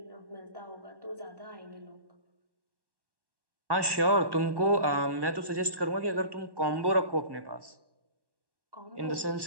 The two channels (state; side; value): late; left; 1.1 ms